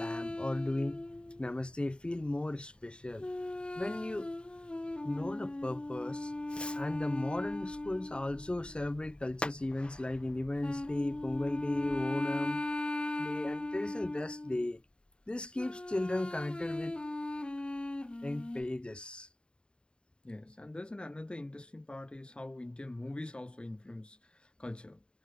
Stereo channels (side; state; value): right; late; 0.051 ms